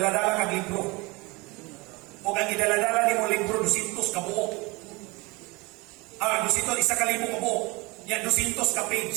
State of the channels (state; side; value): quieter; left; 25.3 dB